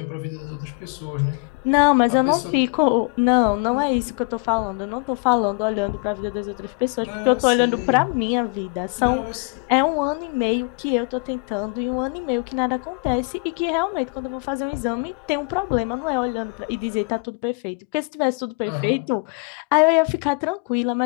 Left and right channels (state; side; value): quieter; right; 33.4 dB